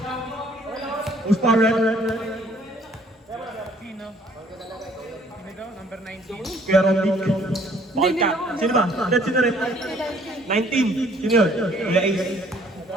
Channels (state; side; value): normal; both; correlation 0.60